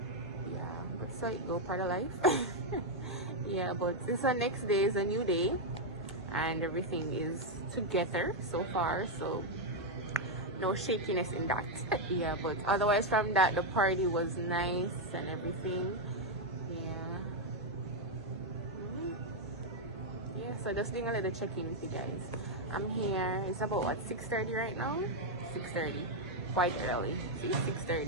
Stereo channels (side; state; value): both; normal; correlation 0.00